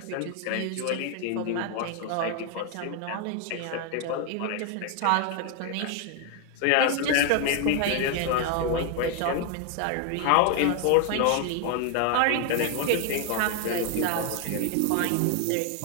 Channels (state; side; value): different; both; correlation 0.01